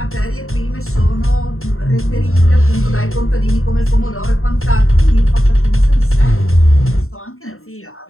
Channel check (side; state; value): right; late; 0.62 ms